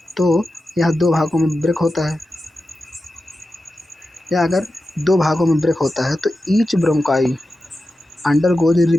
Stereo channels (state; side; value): normal; both; correlation 0.92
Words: तो यह दो भागों में ब्रेक होता है, या अगर दो भागों में ब्रेक होता है तो each bronchi undergoes